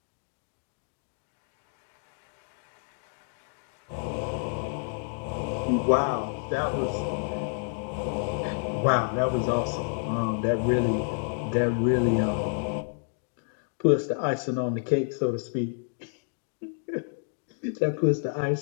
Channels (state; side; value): silent; right; digital silence